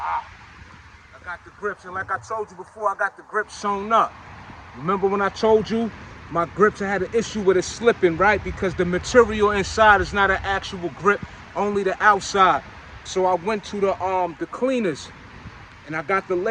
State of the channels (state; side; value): identical; both; correlation 1.00